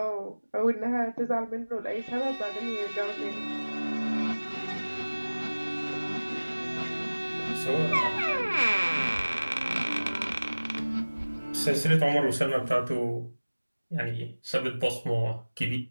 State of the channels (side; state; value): both; inverted; correlation -1.00